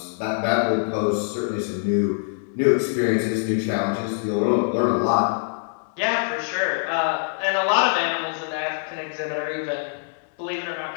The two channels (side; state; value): right; silent; digital silence